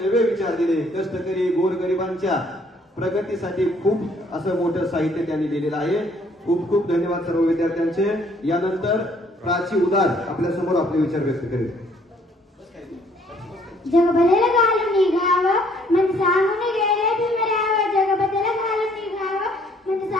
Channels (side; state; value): both; normal; correlation 0.63